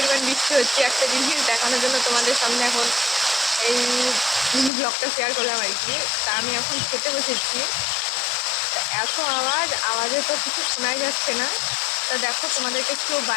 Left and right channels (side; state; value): right; drops out; at 4.7 s